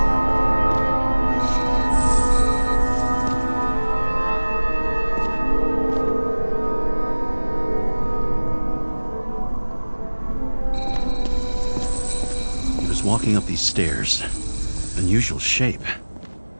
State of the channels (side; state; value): both; inverted; correlation -1.00